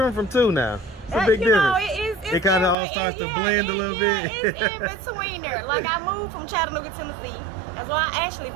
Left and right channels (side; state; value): left; drops out; at 2.8 s